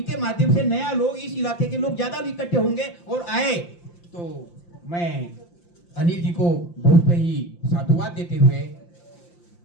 माध्यम से नया लोग, इस इलाके के लोग ज्यादा इकट्ठे होंगे और आए। तो मैं अनिल जी को बहुत ही साधुवाद देते हुए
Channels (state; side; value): late; right; 5.8 ms